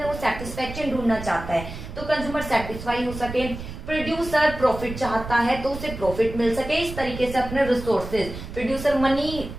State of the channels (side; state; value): right; noise; rumble, 10 dB below the sound